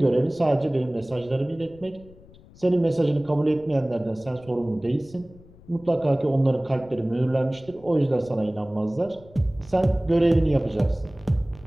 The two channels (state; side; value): noise; left; rumble, 23 dB below the sound